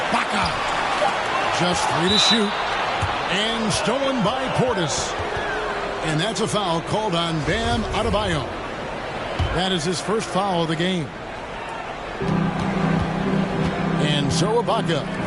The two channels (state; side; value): identical; both; correlation 1.00